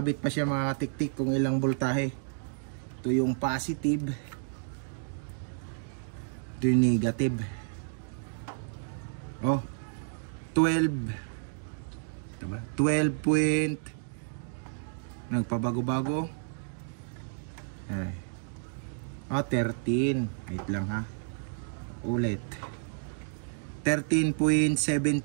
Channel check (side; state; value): left; silent; digital silence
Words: pa siya mga katiktik kung ilang voltahe. Ito yung positive, ito yung negative. Oh, 12 point, nagpabago-bago. Ay. Oh, 13. Wait lang ha. Ulit. 13.17